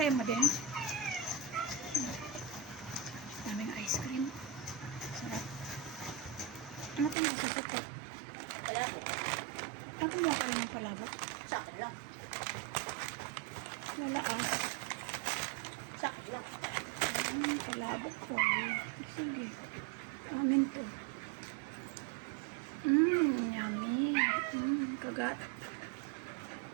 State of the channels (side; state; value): left; drops out; at 7.2 s